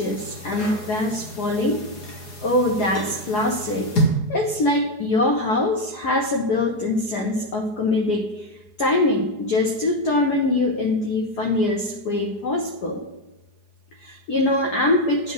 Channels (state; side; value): late; right; 4.8 ms